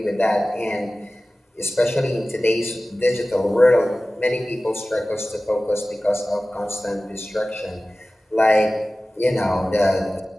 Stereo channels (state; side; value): normal; both; correlation 0.97